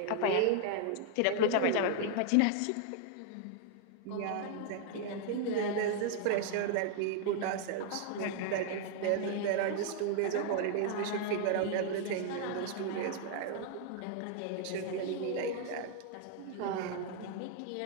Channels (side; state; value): both; different; correlation 0.00